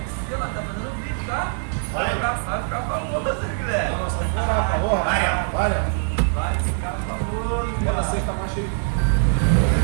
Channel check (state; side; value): silent; left; digital silence